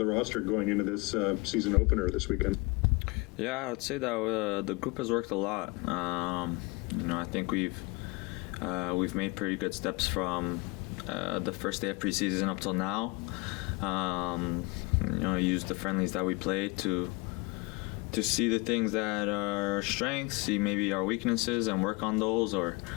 roster going into this season opener this weekend? Yeah, I'd say that the group has worked a lot. I think we've made pretty good steps from the first day of preseason up till now. Use the friendlies that we played to see the things that are our strengths, see maybe our weaknesses, and work on those, or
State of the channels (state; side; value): quieter; right; 25.9 dB